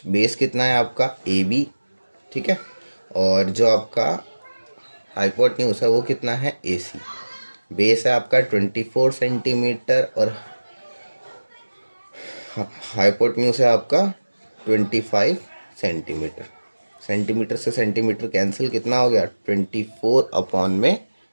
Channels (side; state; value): both; inverted; correlation -1.00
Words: बेस कितना है आपका ए बी। ठीक है, और जो आपका हाइपोटेन्यूज है वो कितना है ए सी। बेस है आपका 24 सेंटीमीटर और हाइपोटेन्यूज है आपका 25 सेंटीमीटर। सेंटीमीटर से सेंटीमीटर कैंसिल, कितना हो गया 24 अपॉन में